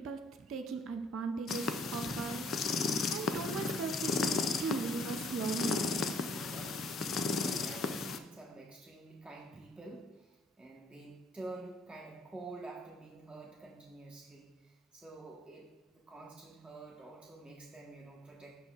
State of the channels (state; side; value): normal; both; correlation 0.61